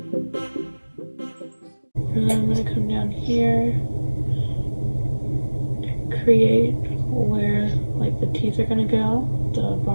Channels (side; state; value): both; inverted; correlation -1.00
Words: And then I'm gonna come down here, create where like the teeth are gonna go, the